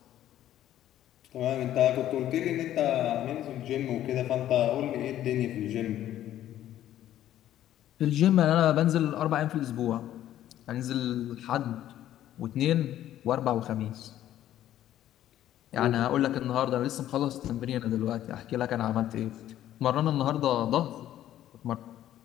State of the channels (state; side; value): quieter; right; 12.3 dB